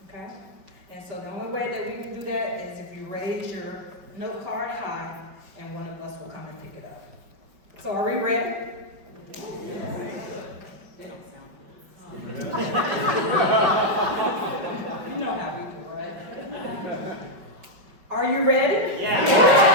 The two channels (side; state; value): left; late; 5.3 ms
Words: okay? And so the only way that we can do that is if you raise your note card high, and one of us will come and pick it up. So are we ready? They don't sound good. You know how we do, right? Are you ready? Yeah.